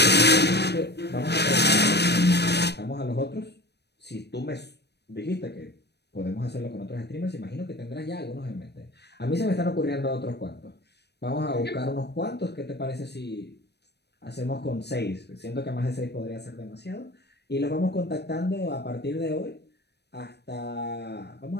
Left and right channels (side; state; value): right; late; 0.49 ms